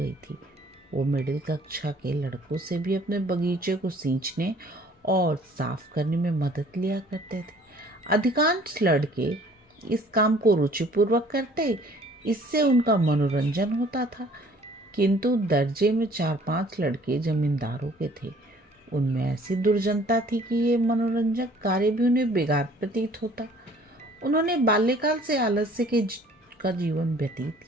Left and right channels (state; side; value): normal; both; correlation 0.55